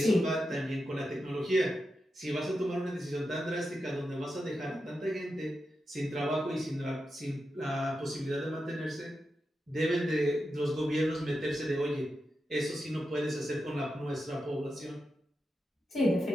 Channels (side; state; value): both; normal; correlation 0.88